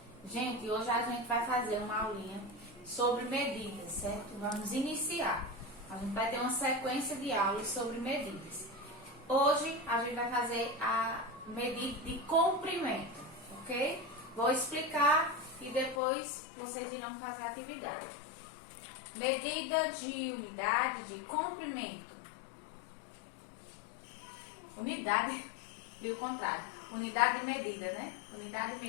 Gente, hoje a gente vai fazer uma aulinha sobre medidas, certo? Vamos iniciar. A gente vai ter uma sequência de aulas sobre medidas. Hoje a gente vai fazer a medida de comprimento, ok? Vou explicar e depois vocês irão fazer a atividade. Medida de unidade de comprimento. Unidade, e o contrário. Unidade de medida, né? Unidade de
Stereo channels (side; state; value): right; drops out; at 16.0 s